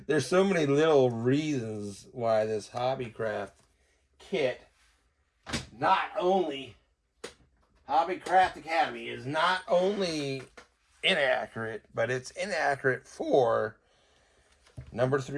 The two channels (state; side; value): identical; both; correlation 1.00